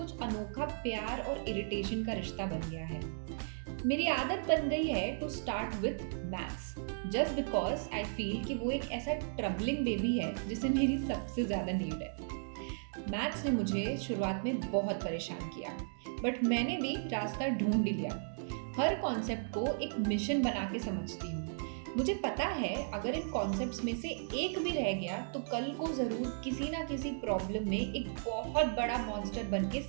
अनोखा प्यार और इरिटेशन का रिश्ता बन गया है। मेरी आदत बन गई है to start with maths just because I feel कि वो एक ऐसा ट्रबलिंग बेबी है जिसे मेरी सबसे ज्यादा नीड है। मैथ्स ने मुझे शुरुआत में बहुत परेशान किया, बट मैंने भी रास्ता ढूंढ लिया। हर कॉन्सेप्ट को एक मिशन बना के समझती हूँ। मुझे पता है अगर इन कॉन्सेप्ट्स में से एक भी रह गया तो कल को जरूर किसी ना किसी प्रॉब्लम में एक बहुत बड़ा मॉन्स्टर बन के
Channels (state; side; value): silent; left; digital silence